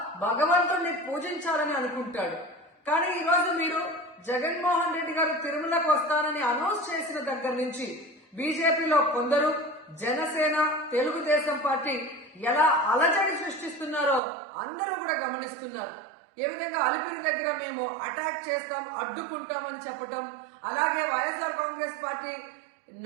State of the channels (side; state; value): left; drops out; at 14.2 s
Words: భగవంతుడిని పూజించాలని అనుకుంటాడు. కానీ ఈ రోజు మీరు జగన్మోహన్ రెడ్డి గారు తిరుమలకు వస్తానని అనౌన్స్ చేసిన దగ్గర నుంచి బీజేపీలో కొందరు, జనసేన, తెలుగుదేశం పార్టీ ఎలా అలజడి సృష్టిస్తున్నారో అందరూ కూడా గమనిస్తున్నారు. ఏ విధంగా అలిపిరి దగ్గర మేము అటాక్ చేస్తాం, అడ్డుకుంటామని చెప్పటం, అలాగే వైఎస్ఆర్ కాంగ్రెస్ పార్టీ